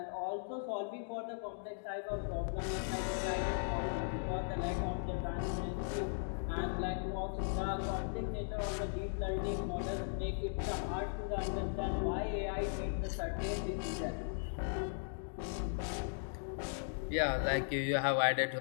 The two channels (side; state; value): right; silent; digital silence